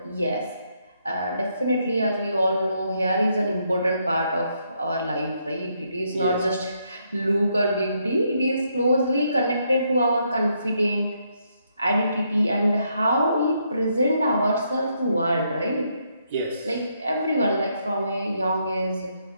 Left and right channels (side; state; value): both; inverted; correlation -0.76